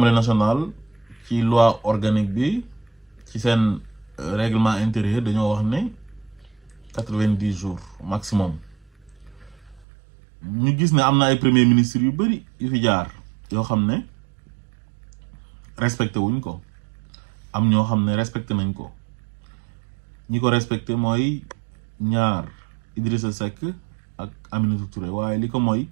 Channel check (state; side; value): drops out; left; at 9.9 s